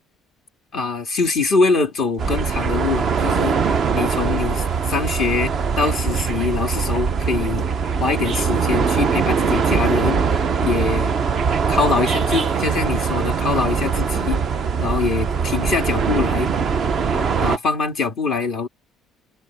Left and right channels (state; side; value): normal; both; correlation 0.58